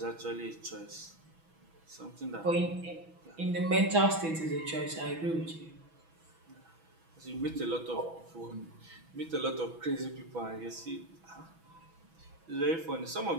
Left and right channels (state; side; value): late; left; 6.1 ms